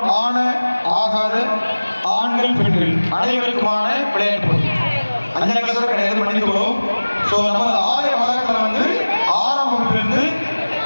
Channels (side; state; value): both; inverted; correlation -1.00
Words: ஆன ஆகாத ஆண்கள் பெண்கள் அனைவருக்குமான விளையாட்டு போட்டி. 5ஆம் கிளாஸ் கிடையாது, மன்னித்துக் கொள்வோம். நமது ஆலய வளாகத்தில் வந்து 6ஆம் வகுப்பிலிருந்து